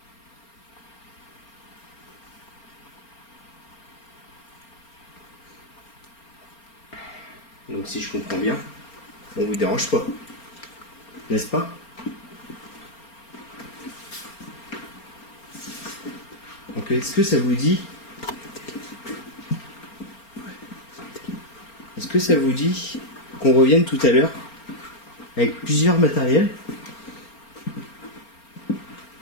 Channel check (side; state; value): right; late; 4.3 ms